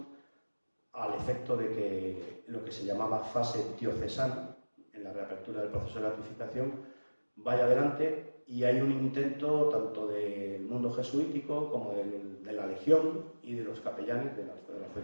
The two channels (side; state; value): both; inverted; correlation -1.00